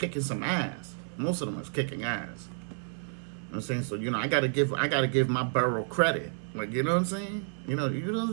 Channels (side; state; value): left; silent; 57 dB below the other